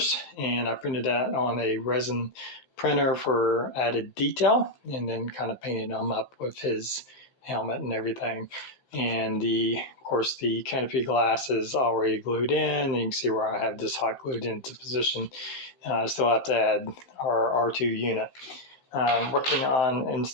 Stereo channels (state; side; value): late; right; 15 ms